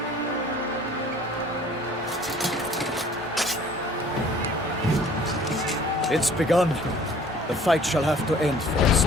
It's begun. The fight shall have to end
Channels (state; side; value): normal; both; correlation 0.52